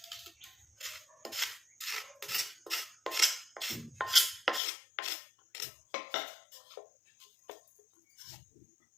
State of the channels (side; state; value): right; drops out; at 4.6 s